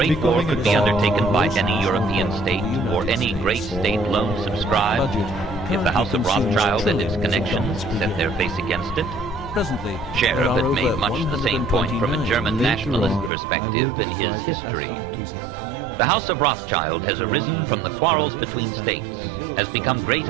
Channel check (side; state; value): left; drops out; at 13.3 s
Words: war could be undertaken by any European state or any great state alone subscribed if the House of Rothschild and its connections set their face against it? Presently, Sheriff had made much the same point from a German nationalist perspective in his history. The House of Rothschild has arisen from the quarrels between states, has become great